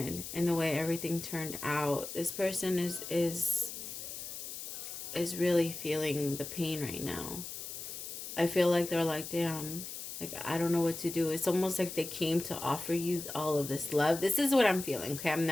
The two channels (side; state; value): left; noise; hiss, 8 dB below the sound